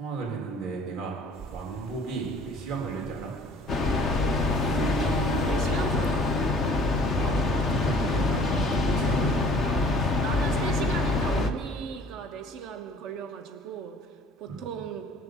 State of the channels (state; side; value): normal; both; correlation 0.52